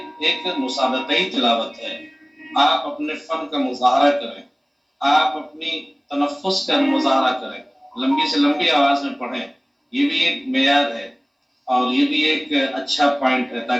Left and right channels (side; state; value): both; identical; correlation 1.00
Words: ایک مسابقائی تلاوت ہے، آپ اپنے فن کا مظاہرہ کریں، آپ اپنی تنفس کا مظاہرہ کریں، لمبی سے لمبی آواز میں پڑھیں. یہ بھی ایک معیار ہے اور یہ بھی ایک اچھا پوائنٹ ہے